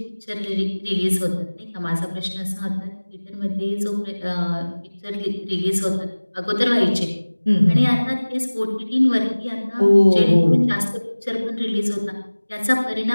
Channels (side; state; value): both; inverted; correlation -1.00